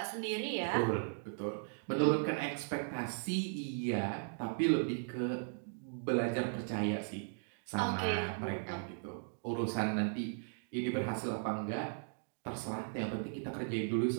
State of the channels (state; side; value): silent; left; digital silence